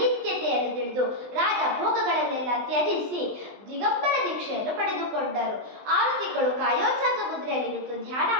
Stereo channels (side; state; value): left; late; 20 ms